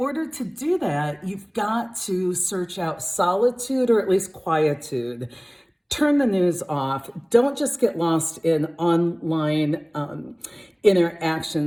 to do that, you've got to search out solitude or at least quietude. Turn the news off. Don't just get lost in online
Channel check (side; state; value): both; identical; correlation 1.00